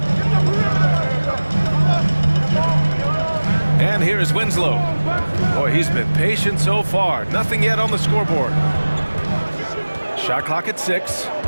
And here is Winslow. Boy, he's been patient so far. Nothing yet on the scoreboard. Shot clock at 6.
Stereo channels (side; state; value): both; inverted; correlation -1.00